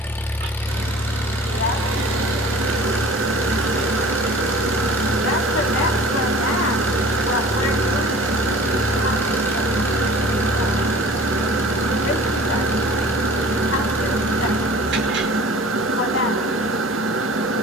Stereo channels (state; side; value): normal; both; correlation 0.44